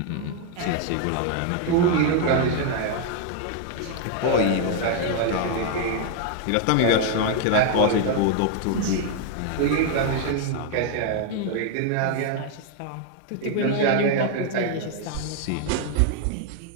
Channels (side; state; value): both; different; correlation 0.00